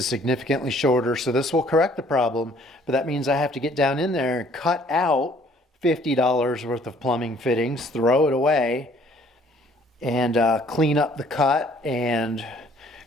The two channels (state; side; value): normal; both; correlation 0.59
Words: significantly shorter, so this will correct the problem, but that means I have to get down in there and cut out $50 worth of plumbing fittings, throw it away, and clean up the cut and